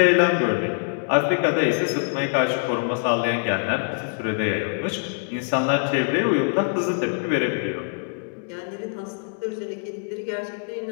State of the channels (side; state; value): right; silent; 63 dB below the other